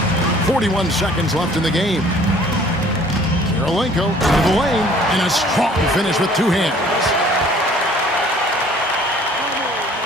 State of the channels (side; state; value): both; normal; correlation 0.54